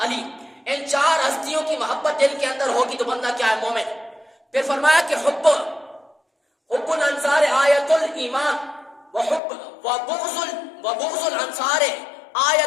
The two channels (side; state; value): right; drops out; at 9.4 s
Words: علی۔ ان چار ہستیوں کی محبت دل کے اندر ہوگی تو بندہ کیا ہے؟ مومن۔ پھر فرمایا کہ حب الانصار آیت الایمان وبغض الانصار